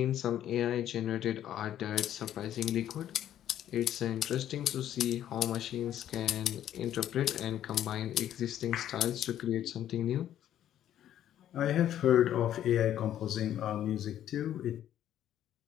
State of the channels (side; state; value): right; quieter; 11.3 dB